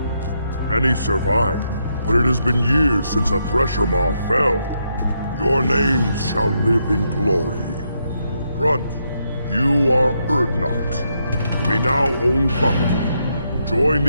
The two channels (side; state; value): both; inverted; correlation -0.79